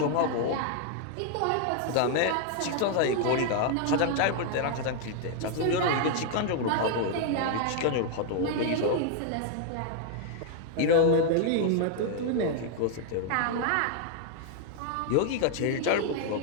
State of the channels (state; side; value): different; both; correlation 0.00